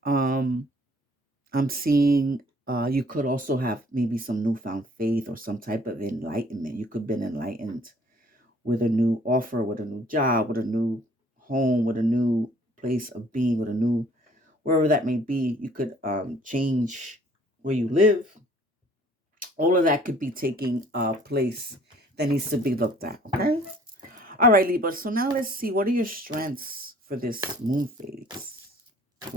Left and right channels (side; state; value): both; normal; correlation 0.56